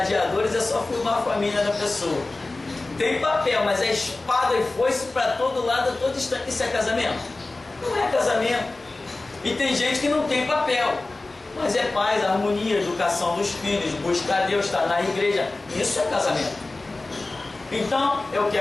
é só filmar a família da pessoa. Tem papel, mas é espada e foice para todo lado, a todo instante. Isso é casamento? Não é casamento. E tem gente que não tem papel. Mas é paz, harmonia, educação dos filhos, buscar Deus, estar na igreja. Isso é casamento. Então, eu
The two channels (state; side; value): quieter; right; 3.1 dB